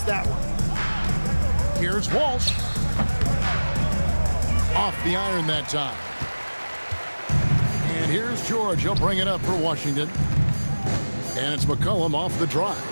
that one. Here's Walsh. Off the iron that time. And here's George. He'll bring it up for Washington. And it's McCollum off the drive.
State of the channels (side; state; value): both; inverted; correlation -1.00